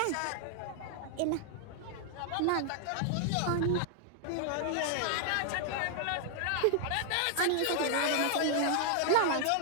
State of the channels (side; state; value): both; different; correlation 0.00